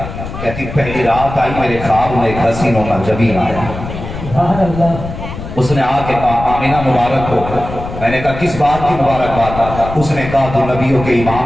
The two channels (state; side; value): noise; left; rumble, 9 dB below the sound